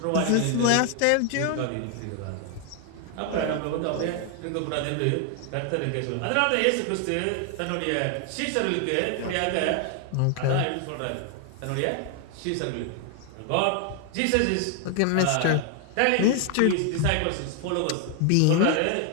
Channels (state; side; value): different; both; correlation 0.00